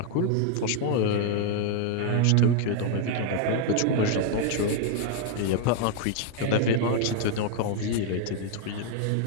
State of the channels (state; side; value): different; both; correlation 0.00